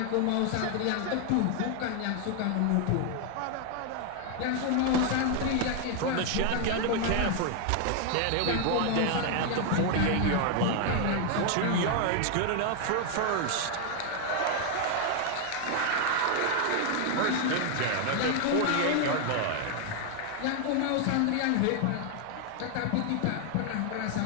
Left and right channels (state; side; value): different; both; correlation 0.00